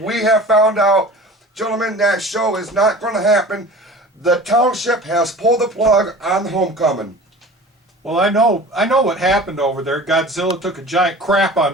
have found out, gentlemen, that show is not going to happen. The township has pulled the plug on the homecoming. Well, I know what happened over there. Godzilla took a giant crap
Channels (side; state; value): both; normal; correlation 0.40